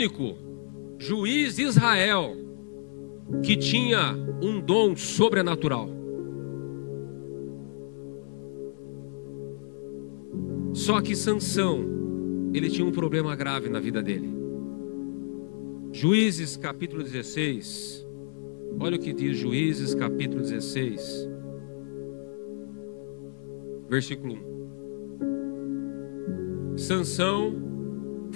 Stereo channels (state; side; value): silent; right; 58 dB below the other